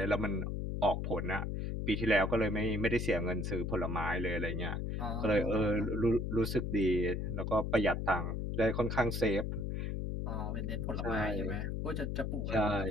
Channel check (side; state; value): left; noise; hum, 2 dB below the sound